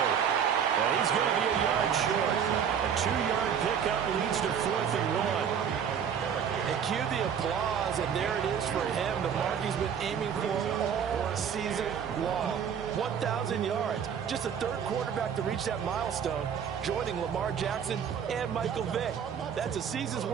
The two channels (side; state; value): left; quieter; 7.8 dB